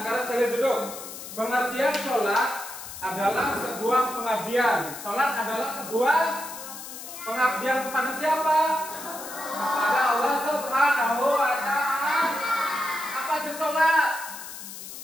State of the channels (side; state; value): left; noise; hiss, 11 dB below the sound